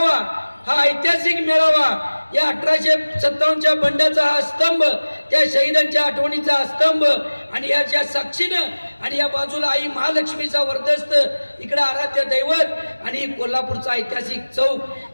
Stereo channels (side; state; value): both; inverted; correlation -1.00